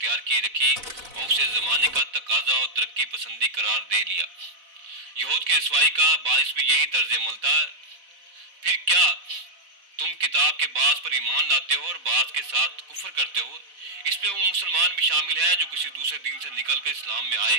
کی رکھی اور اسے زمانے کا تقاضا اور ترقی پسندی قرار دے لیا۔ یہود کی رسوائی کا باعث بھی یہی طرز عمل تھا۔ پھر کیا تم کتاب کے بعض پر ایمان لاتے ہو اور بعض کے ساتھ کفر کرتے ہو؟ اس میں وہ مسلمان بھی شامل ہیں جو کسی دوسرے دین سے نکل کر اسلام میں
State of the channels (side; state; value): left; late; 4.0 ms